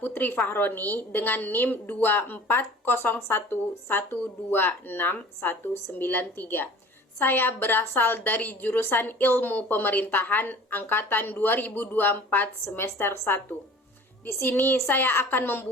Fahroni dengan NIM 2401126193. Saya berasal dari jurusan Ilmu Pemerintahan angkatan 2024 semester 1. Di sini saya akan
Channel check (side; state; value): both; normal; correlation 0.44